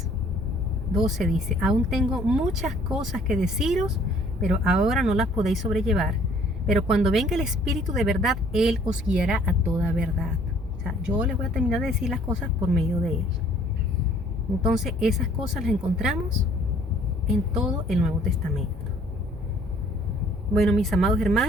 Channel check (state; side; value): normal; both; correlation 0.58